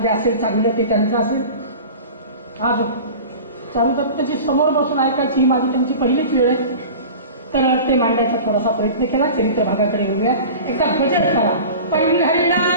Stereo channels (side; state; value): both; inverted; correlation -0.36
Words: जे असेल चांगलं ते त्यांचं असेल. आज चारुदत्तची समोर बसून ऐकायची ही माझी त्यांची पहिलीच वेळ आहे, तर ते मांडण्याचा थोडासा प्रयत्न केला. चरित्र भागाकडे येऊया. एकदा भजन करा.